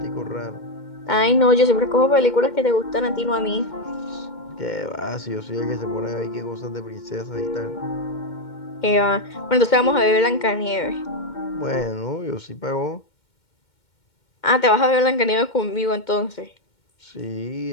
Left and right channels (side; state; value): right; late; 2.2 ms